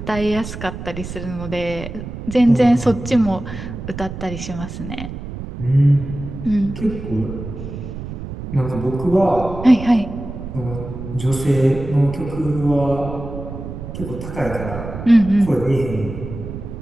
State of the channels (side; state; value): right; noise; rumble, 9 dB below the sound